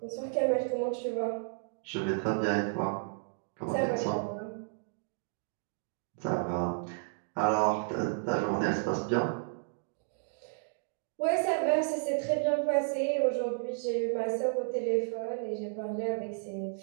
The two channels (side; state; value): left; silent; digital silence